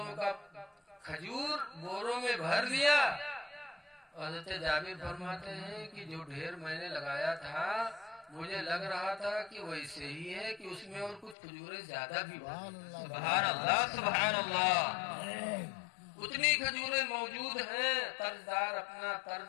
کا کھجور بوروں میں بھر لیا. حضرت جابر فرماتے ہیں کہ جو ڈھیر میں نے لگایا تھا مجھے لگ رہا تھا کہ ویسے ہی ہے کہ اس میں اور کچھ کھجوریں زیادہ بھی سبحان اللہ سبحان اللہ. اتنی کھجوریں موجود ہیں. قرضدار اپنا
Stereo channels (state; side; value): drops out; right; at 11.4 s